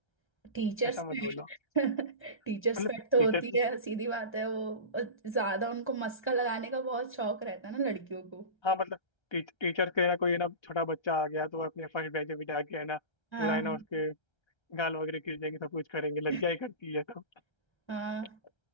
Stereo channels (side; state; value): right; late; 1.3 ms